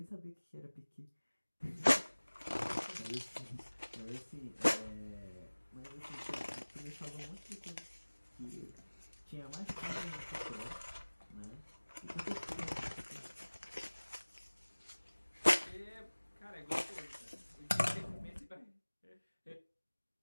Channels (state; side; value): inverted; both; correlation -1.00